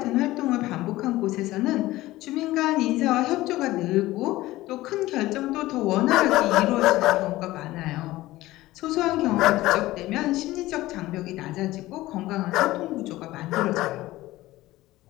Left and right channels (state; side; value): quieter; right; 17.3 dB